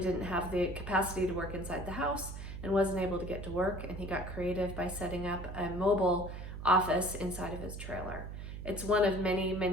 have the capacity to work inside the house and wasn't able to get to work, and he got creative by setting up a mobile office inside of his trailer. It's one of many,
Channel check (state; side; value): noise; right; hum, 8 dB below the sound